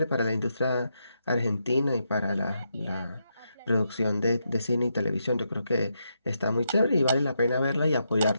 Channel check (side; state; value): both; inverted; correlation -0.82